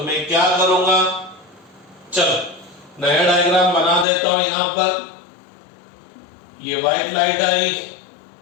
मैं क्या करूंगा? चलो नया डायग्राम बना देता ये व्हाइट लाइट आई,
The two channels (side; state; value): right; drops out; at 4.0 s